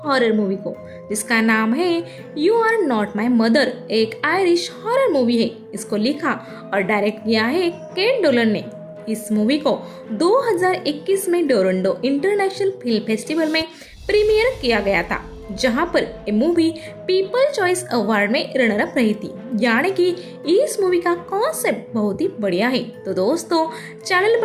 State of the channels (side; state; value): both; identical; correlation 1.00